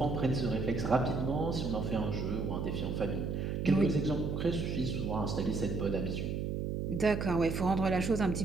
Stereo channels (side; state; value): right; noise; hum, 2 dB below the sound